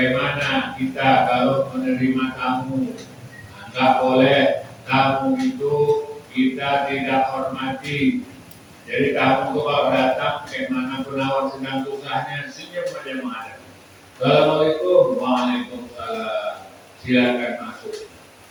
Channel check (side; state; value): both; identical; correlation 1.00